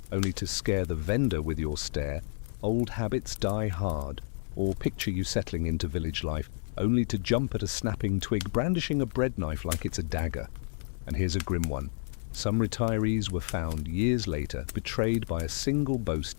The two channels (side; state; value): right; silent; 58 dB below the other